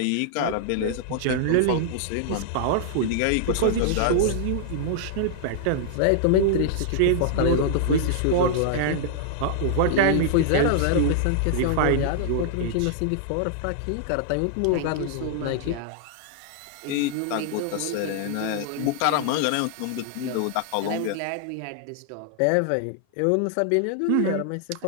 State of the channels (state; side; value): different; both; correlation -0.01